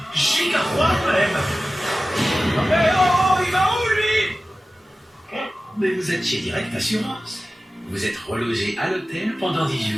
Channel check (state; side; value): normal; both; correlation 0.96